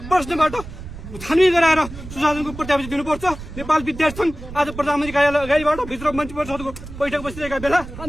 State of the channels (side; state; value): right; noise; rumble, 13 dB below the sound